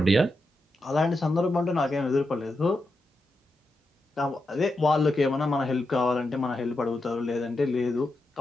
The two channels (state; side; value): normal; both; correlation 0.87